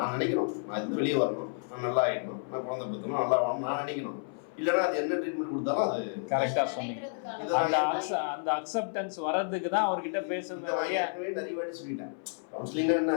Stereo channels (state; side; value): silent; right; 57 dB below the other